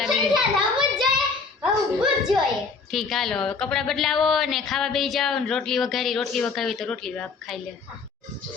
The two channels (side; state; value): right; quieter; 4.7 dB